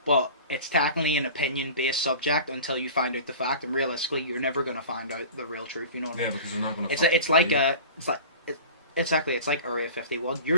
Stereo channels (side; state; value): both; inverted; correlation -0.38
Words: But it's technically an opinion-based subject until you find out the fact, and realistically, you're never going to find out the real truth. You know what I mean? Yeah, because they're not going to. It's like Area 51.